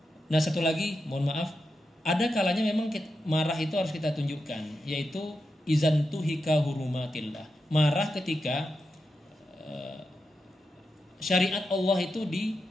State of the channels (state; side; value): normal; both; correlation 0.88